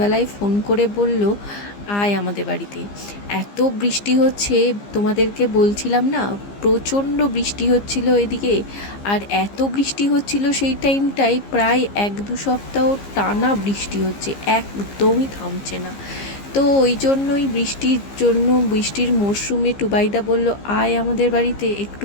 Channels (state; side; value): late; right; 15 ms